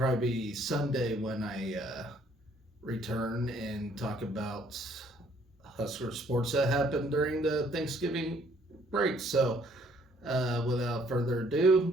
Sunday when I return and talk about Husker sports that happened during the Thanksgiving break. So, without further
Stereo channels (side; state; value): both; normal; correlation 0.63